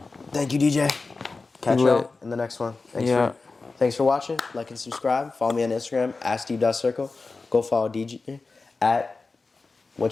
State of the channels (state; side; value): quieter; right; 3.9 dB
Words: Thank you, DJ. Catch Lit. y'all in the next one. Thanks for watching. Like and subscribe. Follow me on Instagram @steve.circle. Go follow DJ at